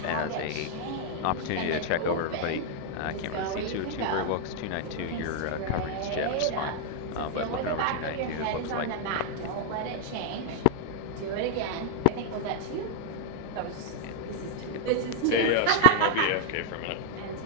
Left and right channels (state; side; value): different; both; correlation 0.00